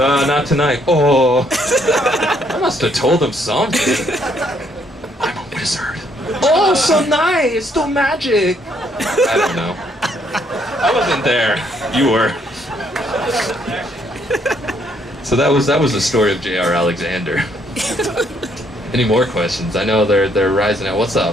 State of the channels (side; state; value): both; normal; correlation 0.69